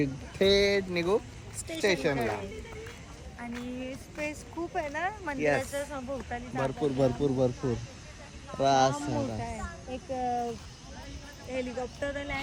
थेट निघू स्टेशनला. आणि स्पेस खूप आहे ना मंदिराच्या सभोवताली. भरपूर भरपूर भरपूर एक हेलिकॉप्टर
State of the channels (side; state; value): both; identical; correlation 1.00